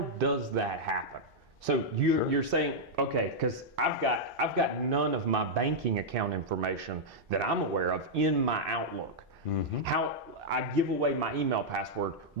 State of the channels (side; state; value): both; normal; correlation -0.06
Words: does that happen? So you're saying, okay, because I've got none of my banking account information that I'm aware of in my Outlook. How I give away my email password,